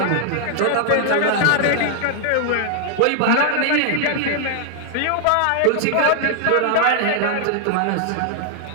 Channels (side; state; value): both; different; correlation 0.00